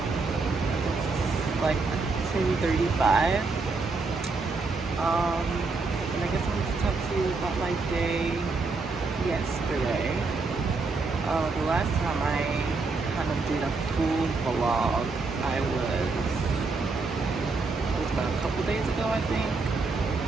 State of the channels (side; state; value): left; quieter; 4.0 dB